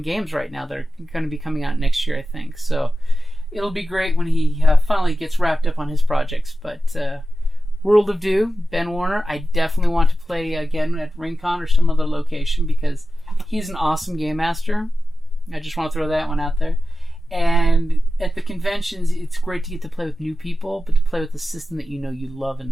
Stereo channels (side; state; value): both; normal; correlation 0.93